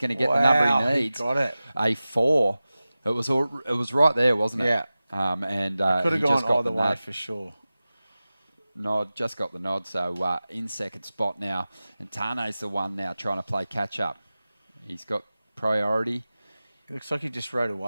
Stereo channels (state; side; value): inverted; both; correlation -0.96